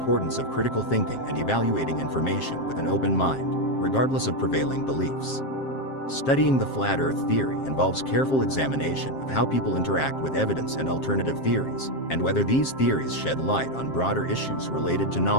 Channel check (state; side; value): late; right; 7.5 ms